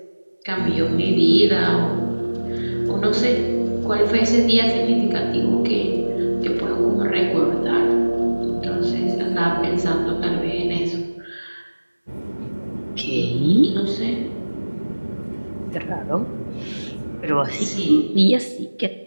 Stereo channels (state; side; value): inverted; both; correlation -1.00